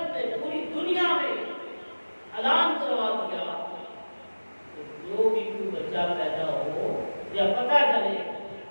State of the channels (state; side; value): inverted; both; correlation -1.00